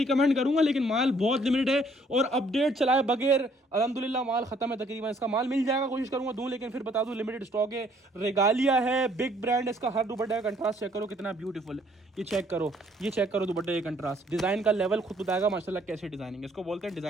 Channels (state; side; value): normal; both; correlation 0.63